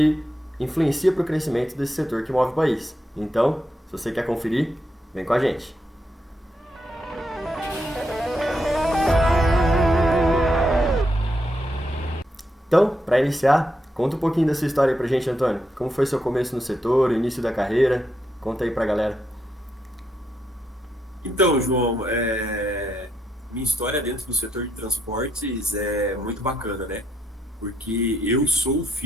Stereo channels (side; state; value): both; normal; correlation 0.80